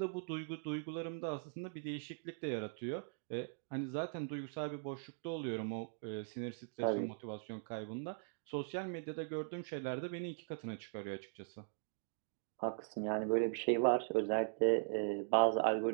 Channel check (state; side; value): silent; left; digital silence